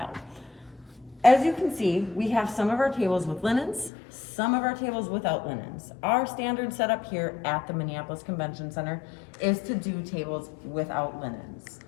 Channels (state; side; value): drops out; right; at 3.9 s